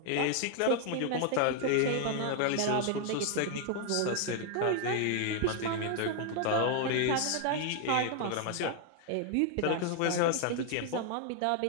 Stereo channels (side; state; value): both; different; correlation 0.00